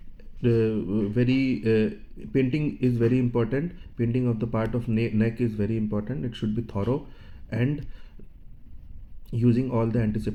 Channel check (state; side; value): identical; both; correlation 1.00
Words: Painting is very important. Painting of the part of neck is very important. It should be thorough and using all the